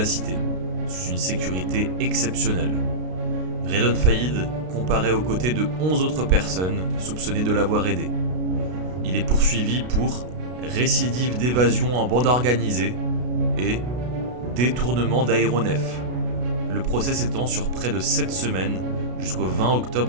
Cité, sous une sécurité exceptionnelle. Redouane Faïd comparaît aux côtés de 11 autres personnes soupçonnées de l'avoir aidé. Il est poursuivi pour récidive d'évasion en bande organisée et détournement d'aéronef. Le procès s'étend sur près de 7 semaines jusqu'au 20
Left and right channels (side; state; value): left; late; 33 ms